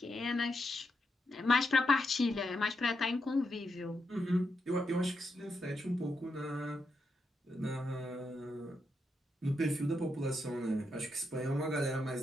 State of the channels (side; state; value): both; normal; correlation 0.83